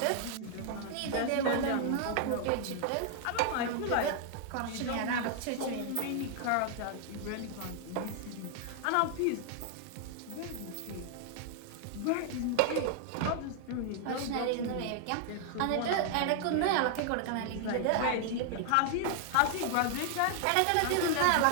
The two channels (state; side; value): different; both; correlation 0.00